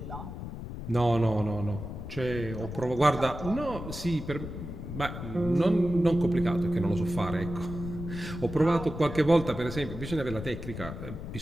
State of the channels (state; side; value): noise; left; rumble, 8 dB below the sound